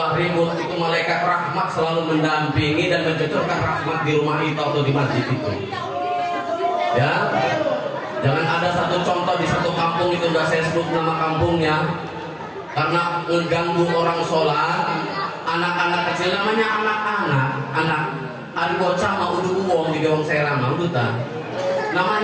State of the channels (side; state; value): both; identical; correlation 1.00